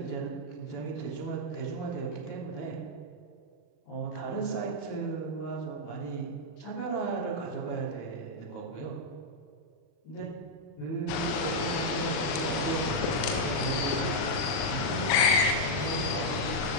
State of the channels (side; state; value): right; late; 40 ms